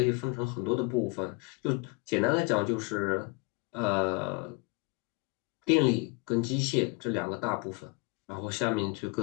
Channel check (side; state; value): right; quieter; 28.6 dB